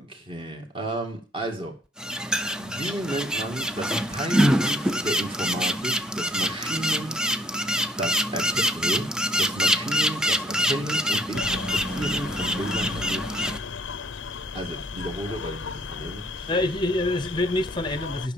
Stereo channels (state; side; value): normal; both; correlation 0.63